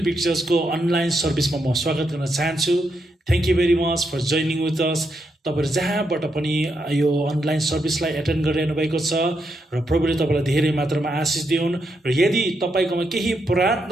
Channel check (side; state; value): both; normal; correlation 0.81